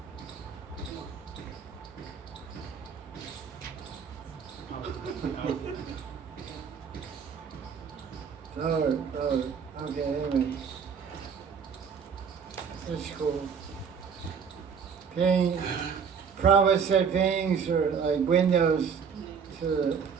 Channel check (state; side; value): quieter; left; 6.6 dB